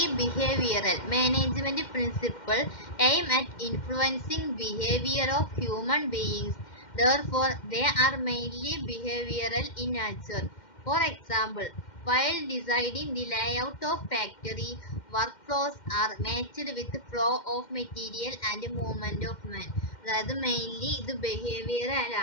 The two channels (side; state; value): right; late; 2.1 ms